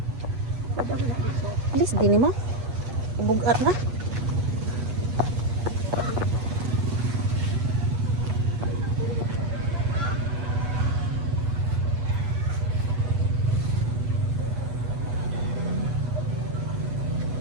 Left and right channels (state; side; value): late; left; 8.2 ms